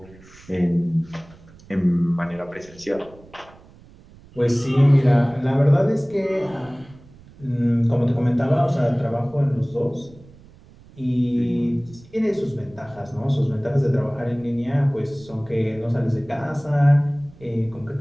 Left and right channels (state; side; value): noise; right; rumble, 23 dB below the sound